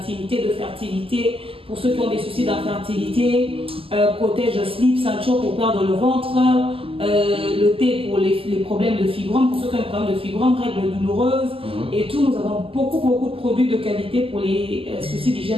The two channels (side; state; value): left; late; 0.26 ms